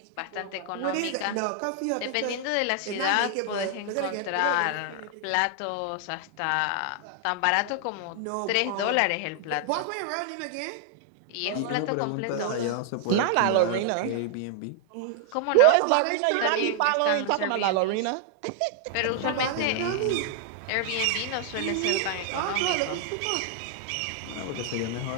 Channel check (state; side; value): different; both; correlation 0.00